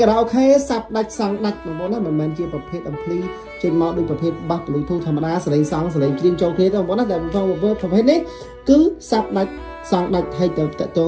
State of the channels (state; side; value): identical; both; correlation 1.00